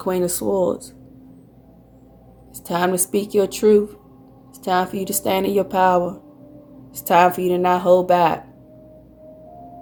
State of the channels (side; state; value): both; identical; correlation 1.00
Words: of Swords. It's time to speak your truth. It's time for you to stand in your power. It's time for you to not hold back